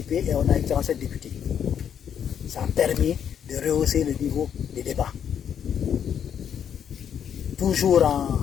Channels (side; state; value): right; quieter; 8.5 dB